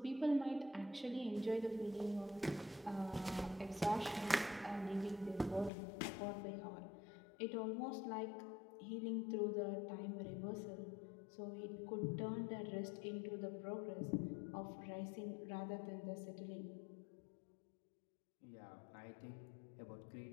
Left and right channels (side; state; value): right; drops out; at 5.7 s